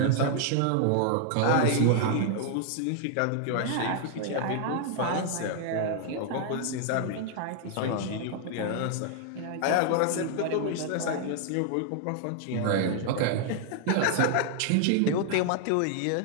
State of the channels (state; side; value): different; both; correlation 0.00